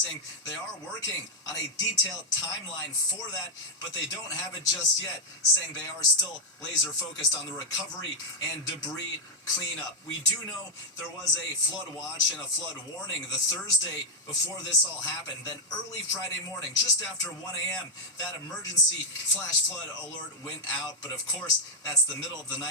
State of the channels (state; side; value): normal; both; correlation 0.01